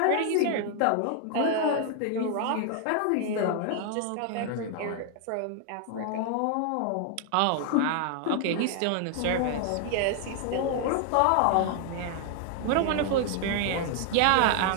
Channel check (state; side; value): different; both; correlation 0.00